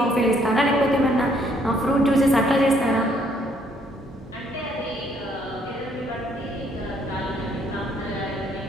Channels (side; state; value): both; normal; correlation 0.67